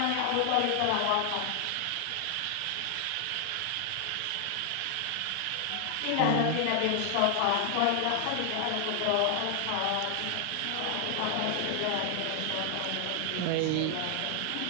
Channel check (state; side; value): different; both; correlation 0.00